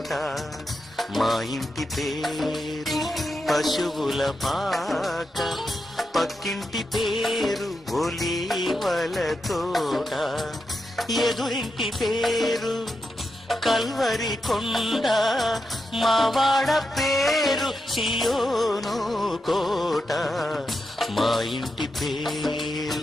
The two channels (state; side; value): normal; both; correlation 0.87